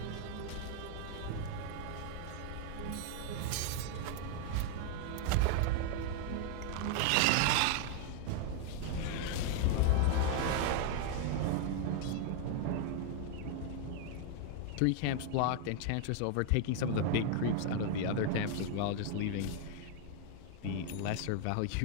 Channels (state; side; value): different; both; correlation 0.00